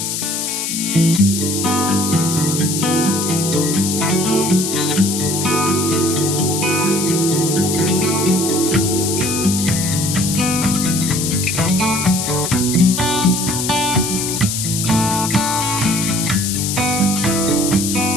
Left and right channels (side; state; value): left; noise; hiss, 2 dB below the sound